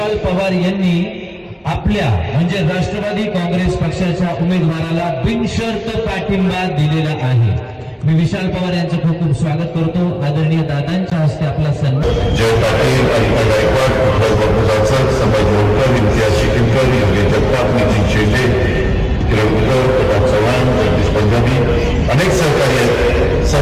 पवार यांनी आपल्या म्हणजे राष्ट्रवादी काँग्रेस पक्षाच्या उमेदवाराला बिनशर्त पाठिंबा दिलेला आहे. मी विशाल पवार यांचं खूप खूप स्वागत करतो. आदरणीय दादांच्या हस्ते आपला सन्मान. जय पाटील, अनिता गायकवाड, उद्धव बाबूजाचं, संभाजी मोडकर, इम्तियाज शिकिलकर, योगेश जगताप, नितीन शेंडे, किरणकर, प्रताप चव्हाण, जगदीश पंजाबी, अनेक सहकारी आहेत.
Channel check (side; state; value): both; identical; correlation 1.00